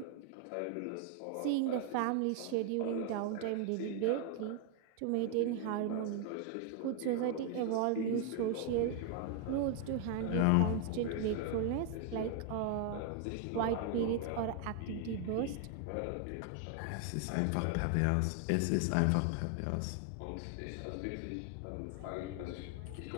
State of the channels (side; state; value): both; different; correlation 0.00